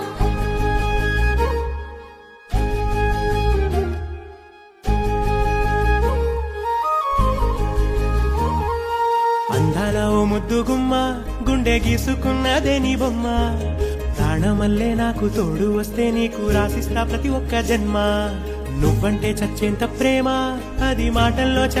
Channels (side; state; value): both; identical; correlation 1.00